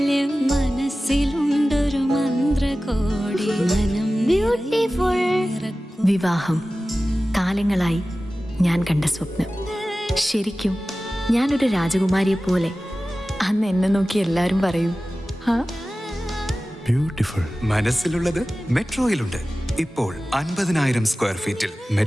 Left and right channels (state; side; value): normal; both; correlation 0.96